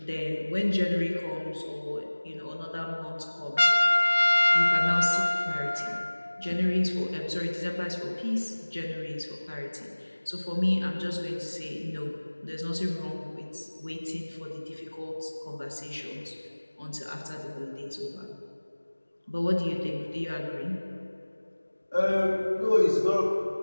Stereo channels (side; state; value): both; inverted; correlation -1.00